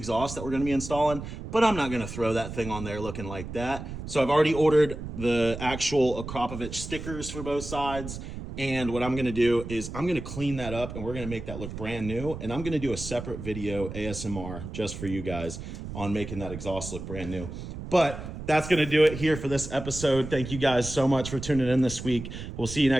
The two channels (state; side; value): noise; right; rumble, 9 dB below the sound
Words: that we're going to be installing, but I'm not going to throw that thing on there looking like that. So I've already ordered the actual Akrapovic stickers for both sides. And what I'm going to do is I'm going to clean that up and we're going to make that look brand new. And I'm going to do a separate video ASMR just for you guys on making that exhaust look brand new. But that's going to do it here for this episode. Thank you guys so much for tuning in this week. We'll see you